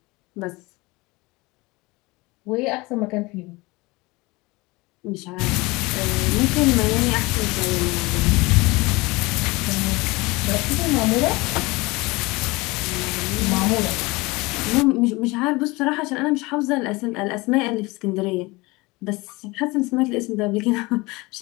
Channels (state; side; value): quieter; right; 23.4 dB